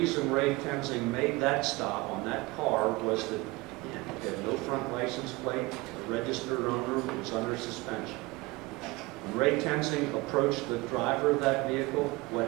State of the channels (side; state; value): left; quieter; 22.3 dB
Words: Ray Tenzing made that stop on that car was that it had no front license plate, the registered owner was under suspension. When Ray Tenzing approached the driver of that vehicle, what